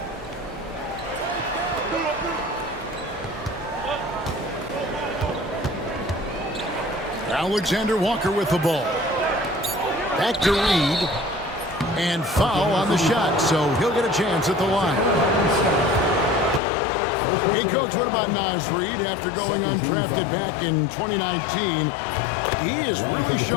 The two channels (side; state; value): right; drops out; at 16.6 s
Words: Alexander Walker with the ball. Back to Reed. And foul on the shot, so he'll get a chance at the line. Hey, Coach, what about Naz Reid after going undrafted back in 2019? He is really